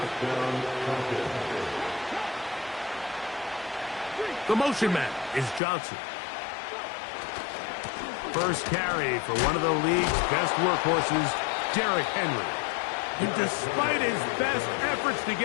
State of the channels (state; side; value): drops out; right; at 5.6 s